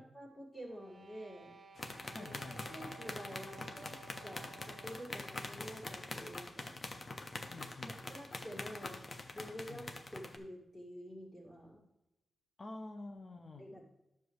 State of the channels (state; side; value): normal; both; correlation 0.92